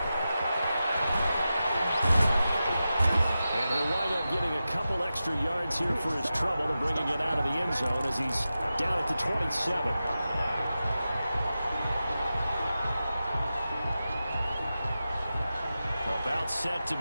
And he'll wind up getting a couple extra yards here for his trouble and bringing it out of the end zone as he's down at the 27. About set to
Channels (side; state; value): both; inverted; correlation -0.93